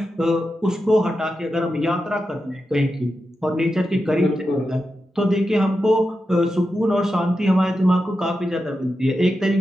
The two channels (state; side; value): normal; both; correlation 0.89